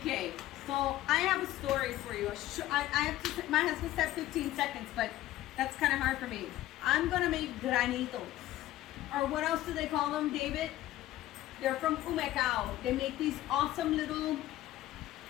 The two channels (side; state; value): right; quieter; 14.9 dB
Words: so I have a story for you. I have to. My husband said 15 seconds, but that's kind of hard for me. I'm gonna make granitos, or what else do they call them, David? They're from Humecao. They make these awesome little,